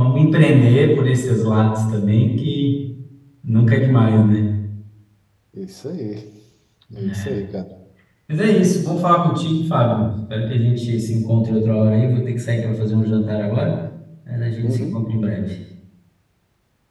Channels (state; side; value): identical; both; correlation 1.00